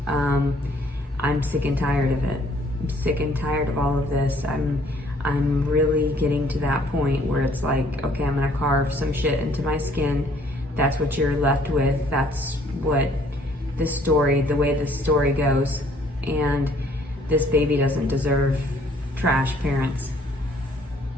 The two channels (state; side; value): normal; both; correlation 0.61